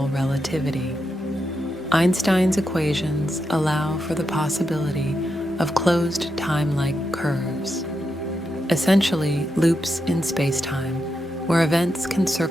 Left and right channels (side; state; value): both; normal; correlation 0.85